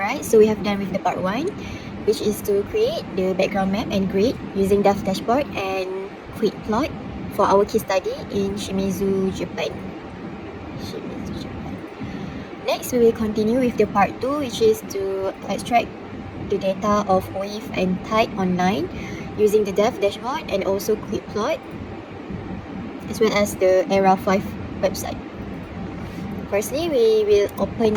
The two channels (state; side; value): identical; both; correlation 1.00